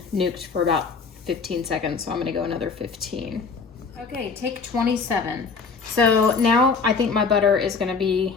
nuked for about 15 seconds, so I'm gonna go another 15. Okay, take 27. So now I think my butter is gonna be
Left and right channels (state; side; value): quieter; right; 5.0 dB